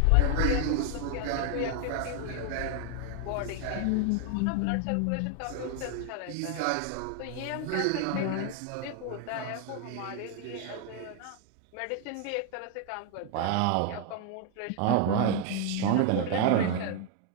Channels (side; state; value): both; different; correlation 0.01